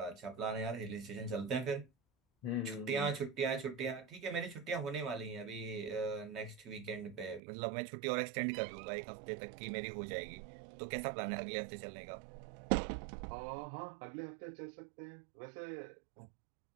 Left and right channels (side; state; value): left; drops out; at 7.4 s